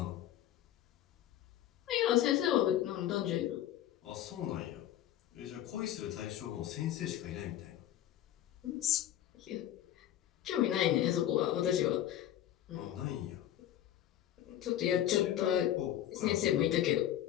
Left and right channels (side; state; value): right; quieter; 12.0 dB